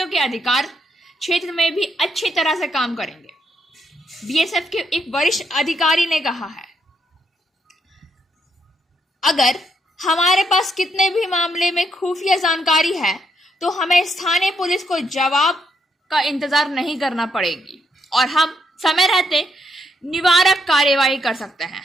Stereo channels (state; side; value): normal; both; correlation 0.77